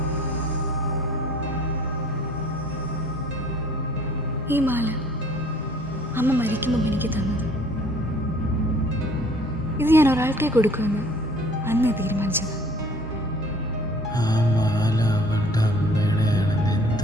ഈ മാല അമ്മ മരിക്കുമ്പോൾ എനിക്ക് തന്നത്. ഇത് ഞാൻ ഒരാൾക്കേ കൊടുക്കുമെന്ന് അന്ന് തീരുമാനിച്ചത്. ആ മാല അവളുടെ അമ്മയുടെയാണെന്ന്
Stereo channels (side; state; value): both; normal; correlation 0.54